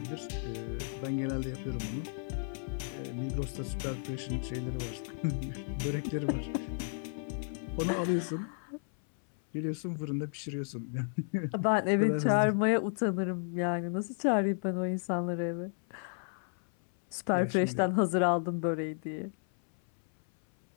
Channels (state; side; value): silent; right; 56 dB below the other